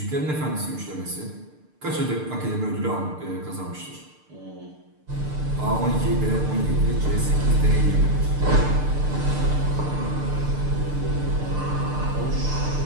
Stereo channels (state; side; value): late; left; 6.7 ms